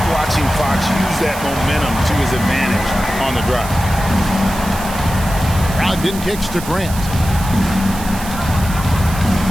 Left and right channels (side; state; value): right; noise; hiss, 12 dB below the sound